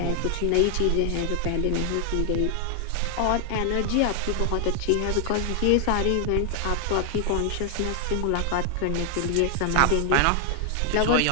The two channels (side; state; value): both; different; correlation 0.00